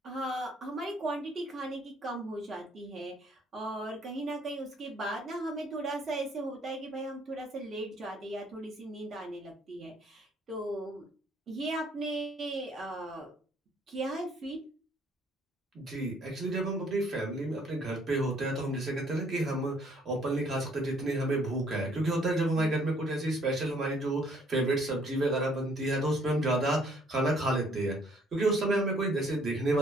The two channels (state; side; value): normal; both; correlation 0.63